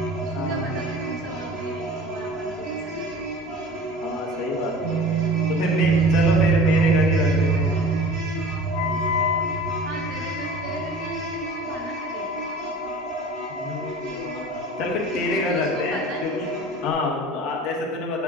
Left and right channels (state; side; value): normal; both; correlation 0.40